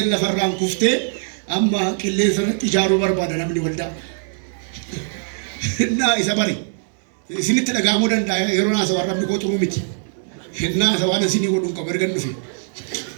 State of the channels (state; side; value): silent; left; digital silence